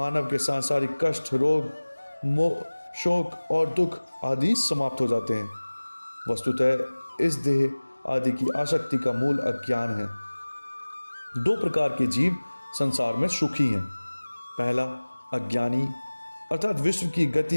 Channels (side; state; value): both; inverted; correlation -1.00